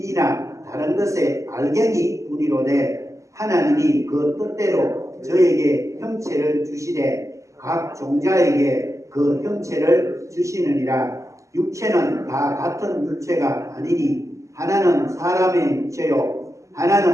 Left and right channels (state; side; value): late; left; 0.15 ms